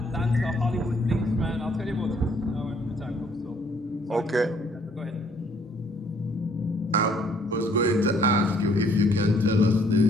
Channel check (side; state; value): both; normal; correlation 0.64